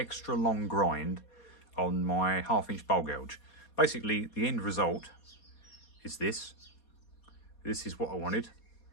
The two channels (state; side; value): late; right; 4.2 ms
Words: long grind on my 1/2 inch bowl gouge. Basically the end result is this. This is what I wanted.